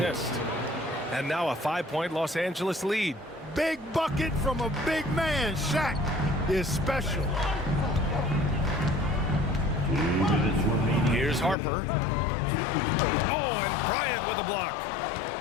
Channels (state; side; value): drops out; right; at 11.6 s